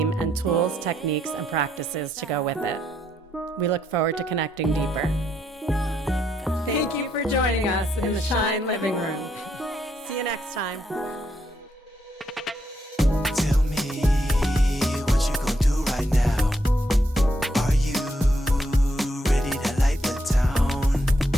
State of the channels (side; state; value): both; normal; correlation 0.76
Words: and tools, techniques, and practices to go with it. We look forward to connecting deeper. Thank you for joining us in the Shine Living Room. See you next time.